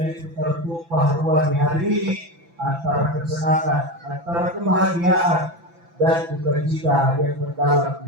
itu tertumpah ruah di hari ini antara kesenangan, antara kebahagiaan dan sukacita yang mendalam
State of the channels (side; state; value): left; late; 6.0 ms